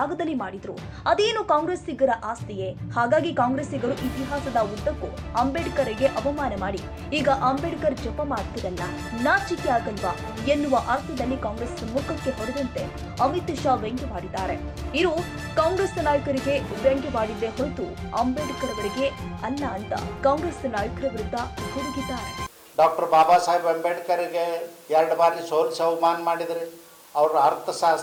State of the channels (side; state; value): both; identical; correlation 1.00